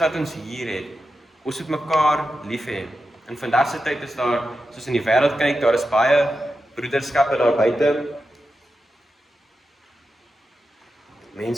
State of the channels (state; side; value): normal; both; correlation 0.90